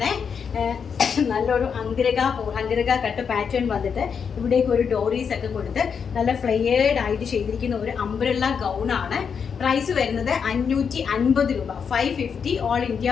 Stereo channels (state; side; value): quieter; right; 6.6 dB